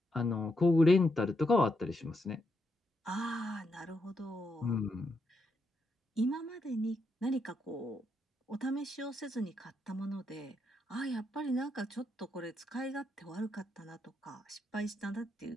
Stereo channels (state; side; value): normal; both; correlation 0.80